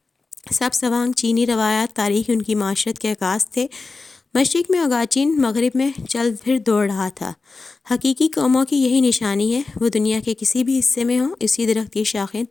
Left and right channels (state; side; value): quieter; right; 3.9 dB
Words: سب سوانگ چینی روایات، تاریخ، ان کی معاشرت کے عکاس تھے۔ مشرق میں اوگاچین مغرب میں چل پھر دوڑ رہا تھا۔ حقیقی قوموں کی یہی نشانی ہے، وہ دنیا کے کسی بھی حصے میں ہوں، اسی درخت کی شاخیں،